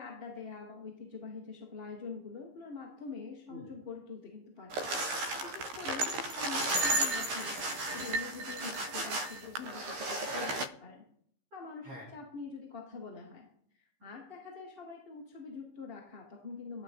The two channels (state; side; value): late; left; 15 ms